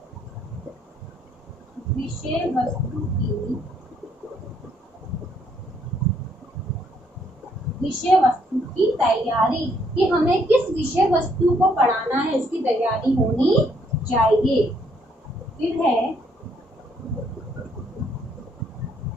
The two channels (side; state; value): both; normal; correlation 0.69